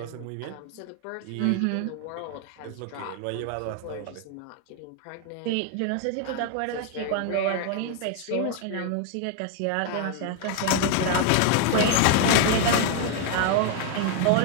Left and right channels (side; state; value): both; different; correlation 0.00